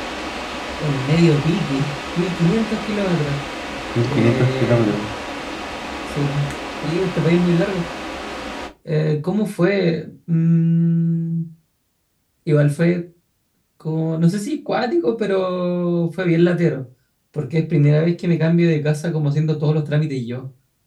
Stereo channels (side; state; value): both; identical; correlation 1.00